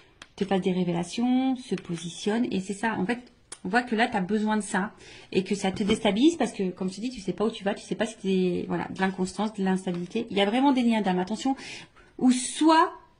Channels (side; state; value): both; identical; correlation 1.00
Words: te fasse des révélations, se positionne. Et c'est ça, en fait, on voit que là, tu as besoin de ça et que ça te déstabilise parce que, comme je te dis, tu sais pas où tu vas, tu sais pas si c'est voilà, de l'inconstance, de l'instabilité. Il y a vraiment des liens d'âme, attention, ou soit